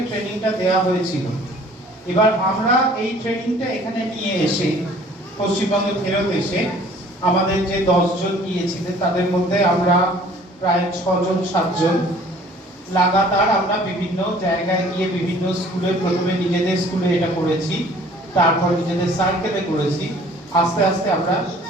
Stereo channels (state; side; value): normal; both; correlation 0.53